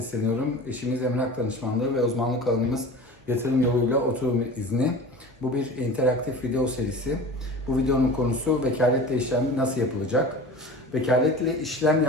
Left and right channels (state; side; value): normal; both; correlation 0.36